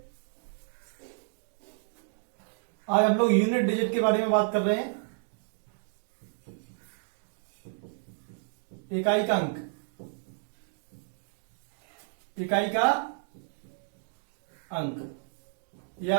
आज हम लोग यूनिट डिजिट के बारे में बात कर रहे हैं। इकाई का अंक, इकाई का अंक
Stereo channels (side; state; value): left; silent; digital silence